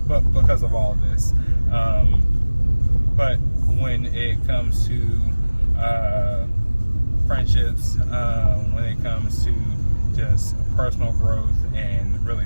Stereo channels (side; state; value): both; inverted; correlation -1.00